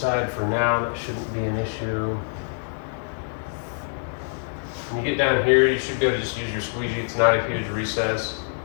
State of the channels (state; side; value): silent; right; 62 dB below the other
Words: for now. That shouldn't be an issue. When you get down here, you should be able to just use your squeegee. It's not a huge recess.